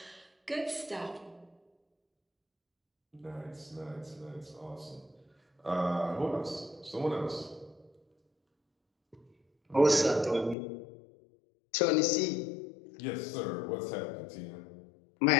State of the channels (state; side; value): drops out; right; at 10.6 s